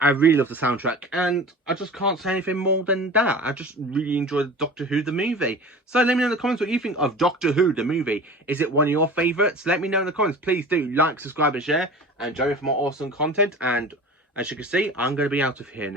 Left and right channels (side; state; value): both; normal; correlation 0.37